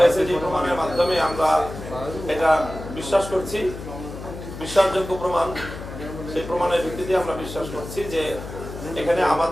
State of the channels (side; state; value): left; noise; hum, 10 dB below the sound